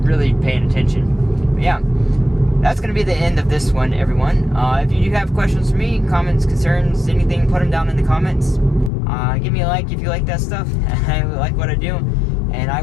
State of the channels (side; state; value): right; drops out; at 8.9 s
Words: really paying attention. But yeah, that's going to be the end of this one, everyone. If you do have questions for me, comments, concerns, anything, put them down in the comments. Give me a like if you like that stuff. I like what I do. And I